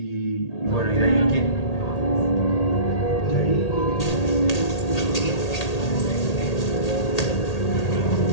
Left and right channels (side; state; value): right; late; 1.8 ms